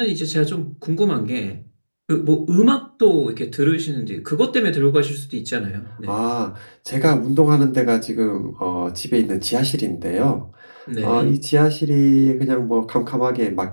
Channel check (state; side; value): inverted; both; correlation -1.00